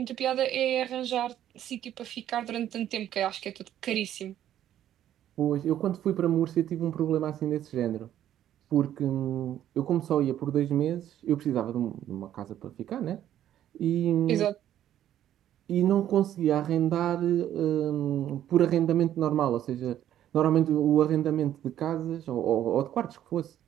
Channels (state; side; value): quieter; left; 11.5 dB